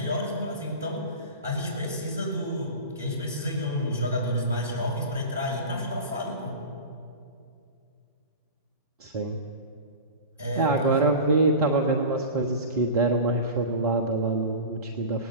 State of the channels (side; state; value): both; inverted; correlation -0.31